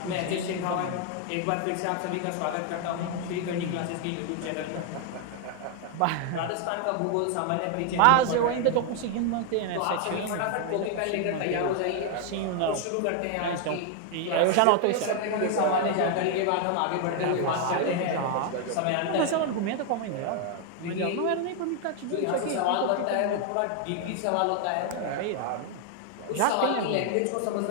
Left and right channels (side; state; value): both; different; correlation 0.00